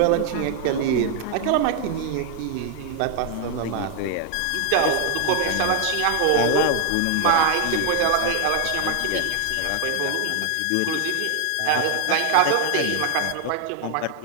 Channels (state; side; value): different; both; correlation 0.00